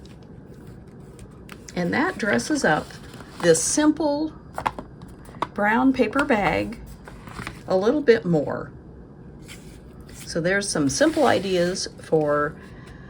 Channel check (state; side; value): identical; both; correlation 1.00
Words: and that dresses up this simple brown paper bag a little bit more. So there's some simple ideas for